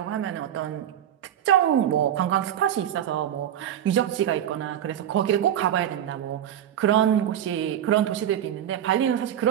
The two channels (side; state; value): left; quieter; 10.5 dB